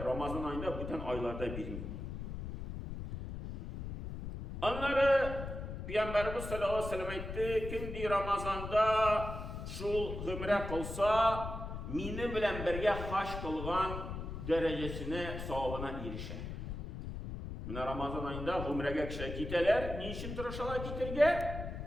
ayında bütün aylarda bilmiyor. Onları Peygamberimiz sallallahu aleyhi ve sellem aytdı, kim Ramazanda şu gümre kılsa, mini bilen birge haş kılgan derecesine, savabına erişer. Mine Ramazan ayında gümrege kişiler kiteler, niçin tırışalar kitirge?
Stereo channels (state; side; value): noise; left; rumble, 7 dB below the sound